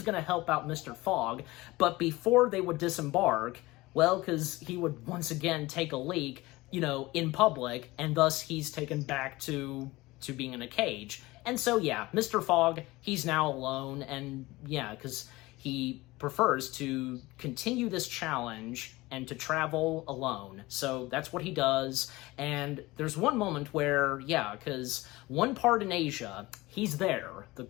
help out Mr. Fogg, but before they would disembark, because he would once again take a leak, in public, and thus he's taken back to being in a cage. And so yeah, Mr. Fogg, he's now alone, and yeah, because he prefers to continue this challenge and to travel alone. So that's what he does. And there's one moment where, because one part in Asia, he's there, the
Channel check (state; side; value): quieter; right; 20.2 dB